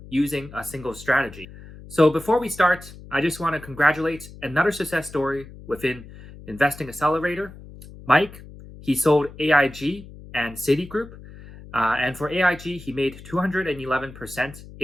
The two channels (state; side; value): noise; left; hum, 17 dB below the sound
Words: using a single strategy. So, before we start, I just want to congratulate another success story within Investing Accelerator. Mike, he sold AIG and Citigroup. And for AIG, he made 211%